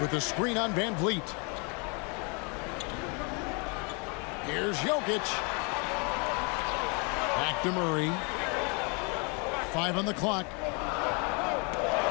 the screen on VanVleet. Here's Jokic. Back to Murray. 5 on the clock.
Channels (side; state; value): right; quieter; 33.6 dB